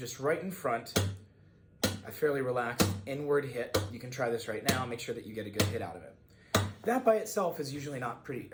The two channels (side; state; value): both; identical; correlation 1.00